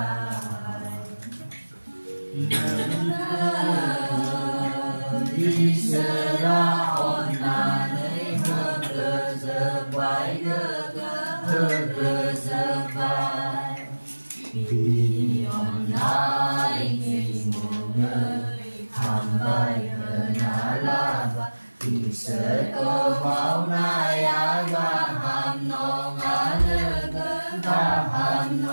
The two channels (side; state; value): both; inverted; correlation -1.00